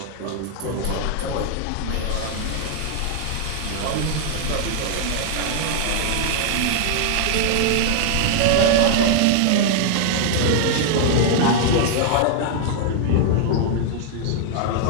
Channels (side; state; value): both; different; correlation 0.00